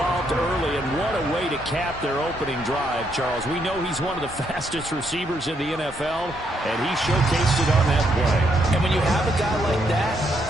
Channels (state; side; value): normal; both; correlation 0.75